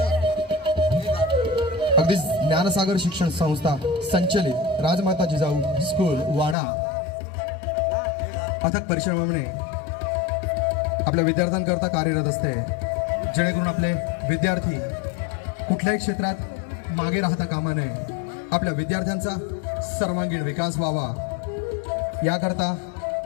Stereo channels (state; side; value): drops out; right; at 6.6 s